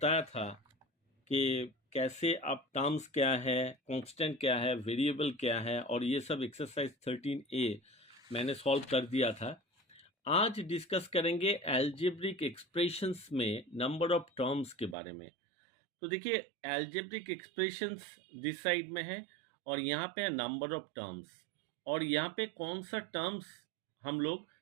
था कि कैसे आप टर्म्स क्या है, कांस्टेंट क्या है, वेरिएबल क्या है और ये सब एक्सरसाइज 13A मैंने सॉल्व कर दिया था। आज डिस्कस करेंगे एल्जेब्रिक एक्सप्रेशंस में नंबर ऑफ टर्म्स के बारे में। तो देखिए, एल्जेब्रिक एक्सप्रेशंस दिस साइड में है और यहाँ पे है नंबर ऑफ टर्म्स, और यहाँ पे कौन सा टर्म्स हम लोग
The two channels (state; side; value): drops out; left; at 15.0 s